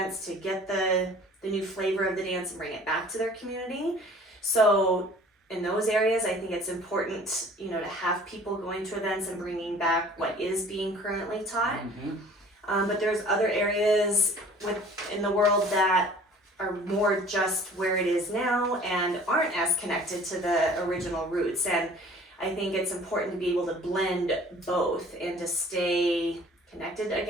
to get the new flavor of the dance and bring it back to their community. So in those areas, I think it's important, to have people going to events and bringing back what is being currently taught. But there's other areas in the world that are more just where it is now and aren't as connected to the original roots. And I think it's important to be able to blend both and to stay connected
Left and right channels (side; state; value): both; normal; correlation 0.49